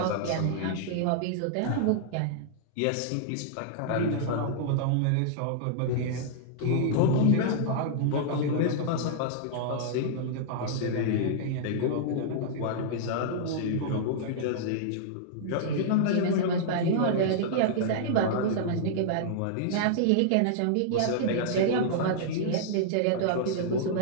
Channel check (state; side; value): different; both; correlation -0.02